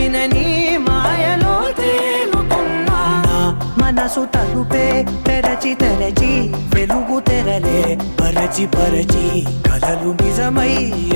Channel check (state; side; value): inverted; both; correlation -1.00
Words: మాయలో తేలుతున్నా నా మనసు తలుపే తెరచి తెరచి వెలుగు తెరలే పరచి పరచి కలలు నిజమై